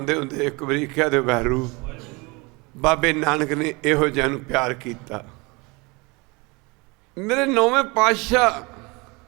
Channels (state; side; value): quieter; left; 26.6 dB